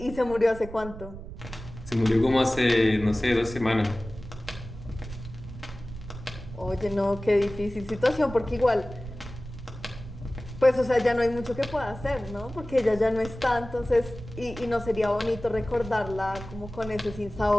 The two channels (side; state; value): right; noise; rumble, 13 dB below the sound